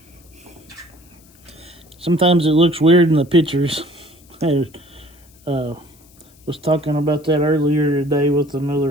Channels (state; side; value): noise; left; hiss, 28 dB below the sound